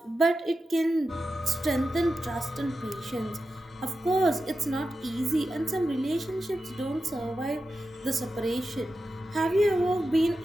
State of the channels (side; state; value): both; normal; correlation 0.91